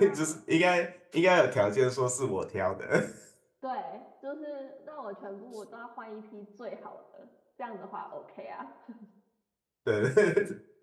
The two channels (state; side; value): identical; both; correlation 1.00